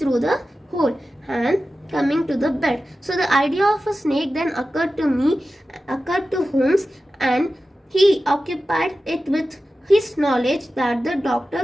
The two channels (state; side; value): normal; both; correlation 0.94